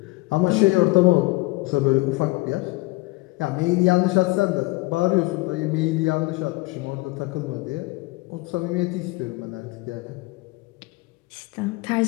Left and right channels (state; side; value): quieter; right; 22.6 dB